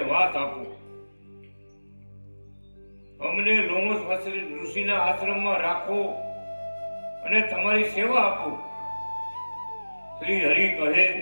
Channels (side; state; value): both; inverted; correlation -1.00